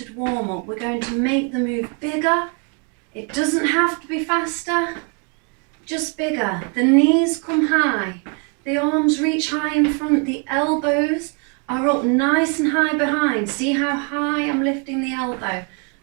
warm-up. We're going to make the move bigger. It doesn't have to be faster, just bigger. The knees come high, the arms reach high in front, the elbows are up nice and high behind. See how high I'm lifting the elbow,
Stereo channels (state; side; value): quieter; left; 35.7 dB